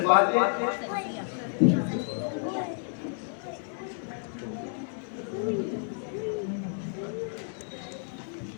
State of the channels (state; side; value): silent; right; 58 dB below the other